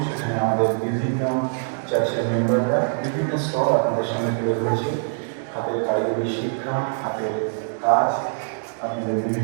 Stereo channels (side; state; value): left; silent; digital silence